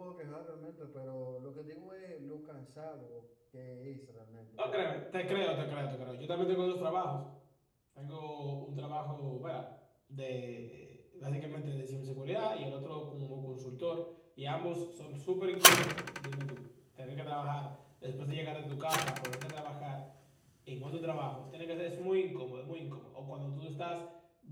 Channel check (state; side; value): identical; both; correlation 1.00